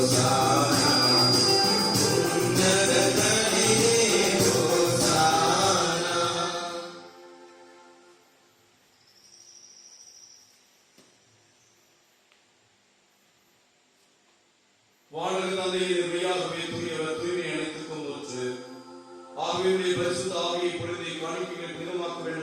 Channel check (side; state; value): both; identical; correlation 1.00